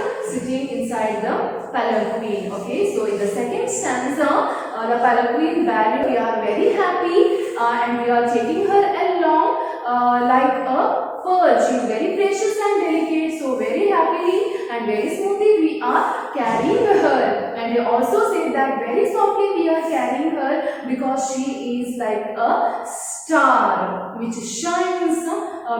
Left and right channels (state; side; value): identical; both; correlation 1.00